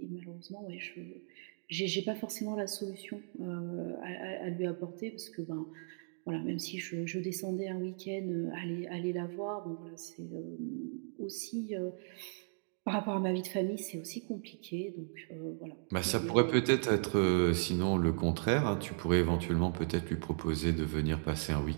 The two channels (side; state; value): left; silent; digital silence